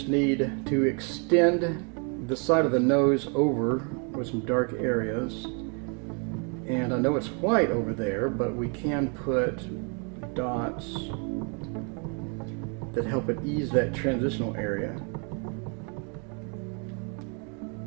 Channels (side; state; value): left; quieter; 37.8 dB